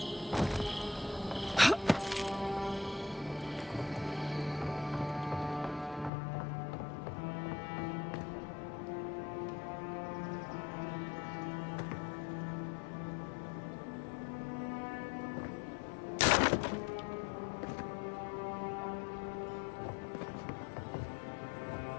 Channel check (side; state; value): right; drops out; at 6.1 s